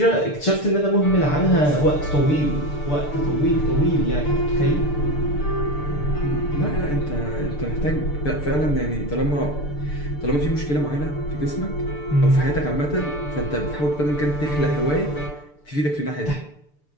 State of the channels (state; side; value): late; right; 6.8 ms